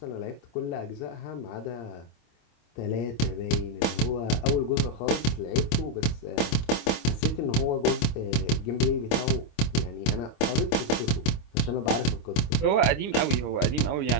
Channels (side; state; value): right; late; 26 ms